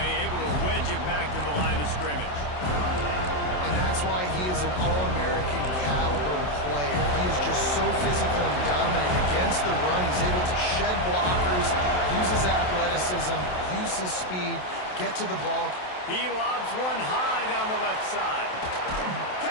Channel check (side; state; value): right; late; 27 ms